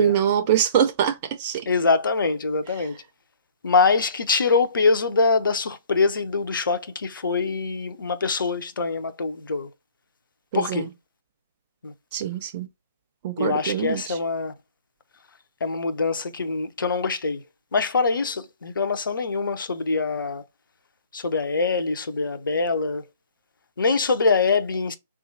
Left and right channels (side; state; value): both; inverted; correlation -0.54